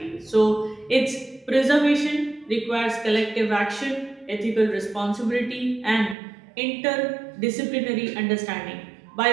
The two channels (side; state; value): left; drops out; at 6.2 s